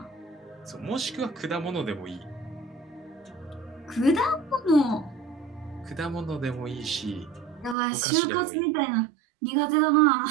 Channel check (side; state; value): left; drops out; at 7.8 s